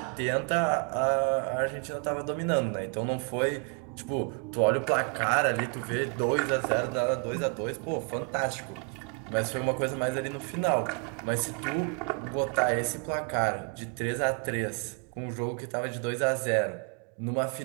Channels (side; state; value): left; quieter; 34.8 dB